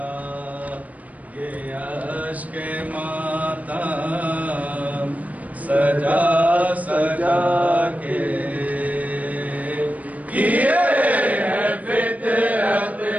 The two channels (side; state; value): left; late; 0.072 ms